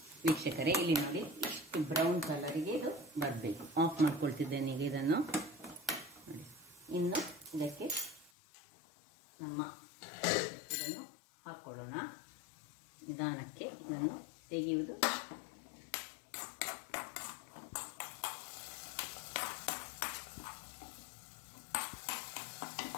ವೀಕ್ಷಕರೇ ಇಲ್ಲಿ ನೋಡಿ ಇಷ್ಟು ಬ್ರೌನ್ ಕಲರಿಗೆ ಇದು ಬರಬೇಕು. ಆಫ್ ಮಾಡ್ಕೊಳ್ತಿದ್ದೇನೆ ಈಗ ಇದನ್ನು ನೋಡಿ. ಇನ್ನು ಇದಕ್ಕೆ ಇದನ್ನು ಹಾಕ್ಕೊಳ್ಳೋಣ. ನಿಧಾನಕ್ಕೆ ಇದನ್ನು ತೆಗೆಯುವುದು.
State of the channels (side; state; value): right; drops out; at 8.3 s